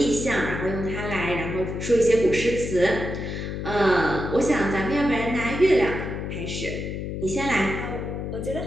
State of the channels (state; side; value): noise; left; hum, 5 dB below the sound